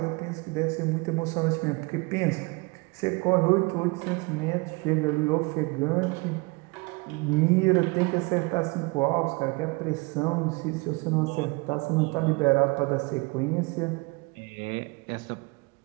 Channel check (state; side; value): quieter; left; 27.5 dB